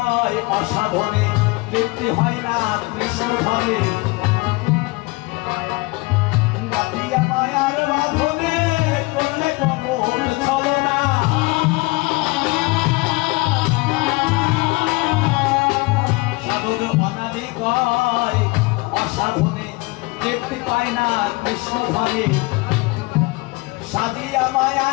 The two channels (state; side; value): quieter; right; 24.5 dB